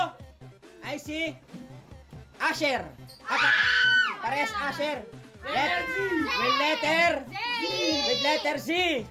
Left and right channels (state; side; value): identical; both; correlation 1.00